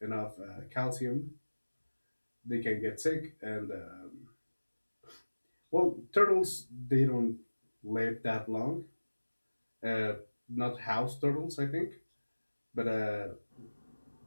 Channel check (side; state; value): both; inverted; correlation -1.00